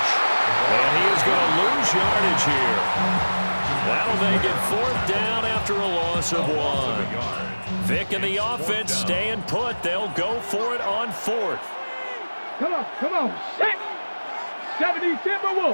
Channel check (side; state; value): both; inverted; correlation -1.00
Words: And he is going to lose yardage here. That'll make it 4th down after a loss of 1. Vic and the offense staying put. They'll go for it on 4th. Come on, set. 70